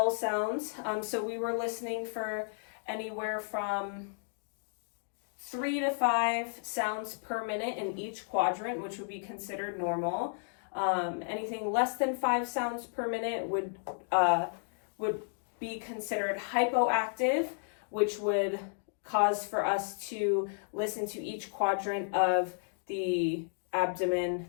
sounds. So we were listening for anywhere from 3 to 5 sounds per minute in each quadrant, which would be considered normal. Anything less than 5 sounds per minute would be considered hypoactive, which would cause for us to listen to each quadrant of the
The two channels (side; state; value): right; silent; digital silence